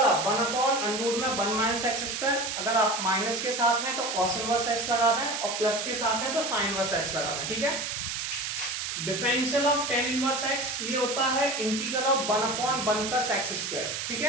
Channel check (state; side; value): noise; right; hiss, 3 dB below the sound